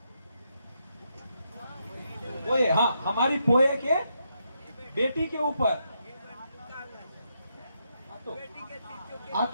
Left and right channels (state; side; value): inverted; both; correlation -0.80